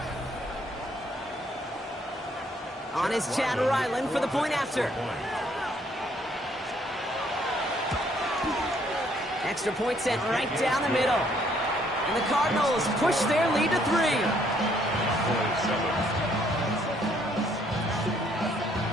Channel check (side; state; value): both; normal; correlation 0.67